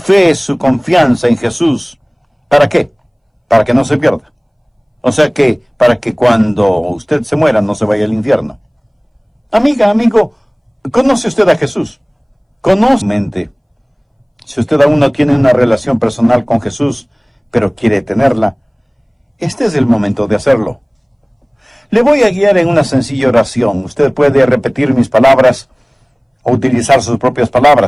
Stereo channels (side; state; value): both; identical; correlation 1.00